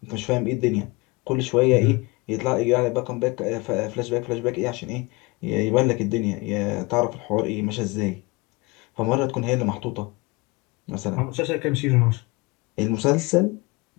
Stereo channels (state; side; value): quieter; right; 25.2 dB